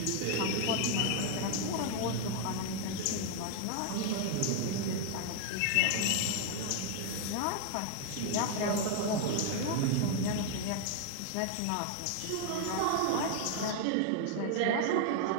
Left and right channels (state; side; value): different; both; correlation 0.00